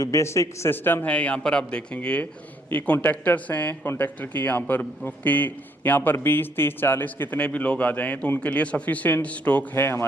बेसिक सिस्टम है यहाँ पर आप देखेंगे, ये कॉन्ट्रैक्टर्स हैं। कॉन्ट्रैक्टर की यहाँ पर 20, 30, 40 कितने भी लोग आ जाएं तो उनके लिए सफिशिएंट स्टॉक है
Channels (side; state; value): both; normal; correlation 0.69